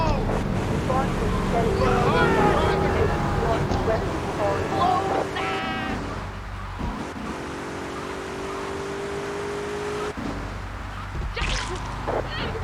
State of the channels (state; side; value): identical; both; correlation 1.00